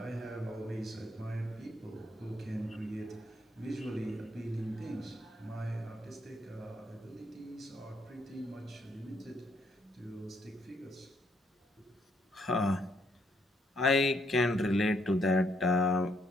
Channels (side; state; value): both; normal; correlation 0.72